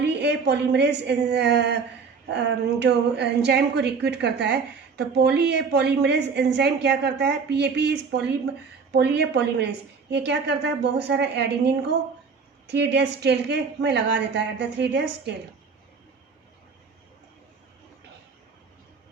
पॉलीमरेज जो एंजाइम को रिक्रूट करता है. तो पॉली ए पॉलीमरेज एंजाइम क्या करता है, PAP is poly A polymerase, ये क्या करता है, बहुत सारा एडिनिन को 3 days टेल के में लगा देता है एट द 3 days टेल.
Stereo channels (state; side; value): quieter; left; 5.3 dB